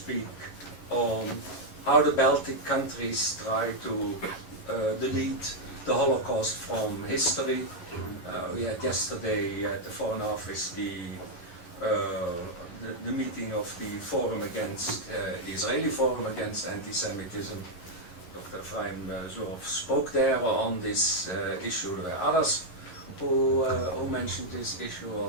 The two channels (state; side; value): late; right; 11 ms